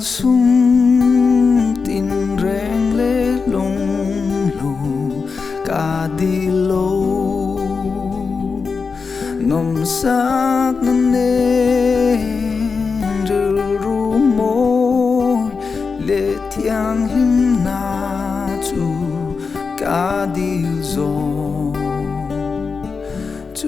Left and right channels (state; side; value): quieter; right; 5.0 dB